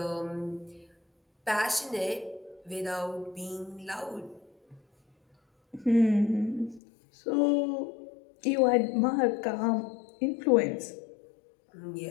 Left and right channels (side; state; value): right; drops out; at 6.8 s